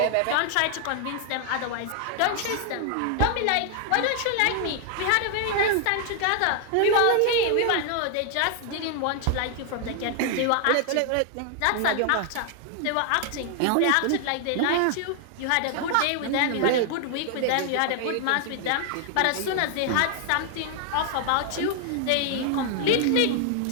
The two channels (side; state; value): both; different; correlation 0.00